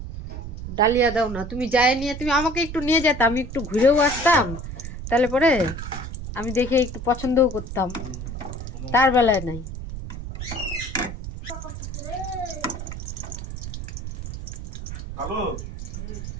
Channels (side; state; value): right; noise; rumble, 8 dB below the sound